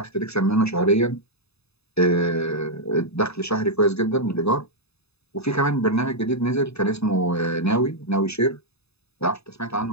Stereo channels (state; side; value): late; right; 0.79 ms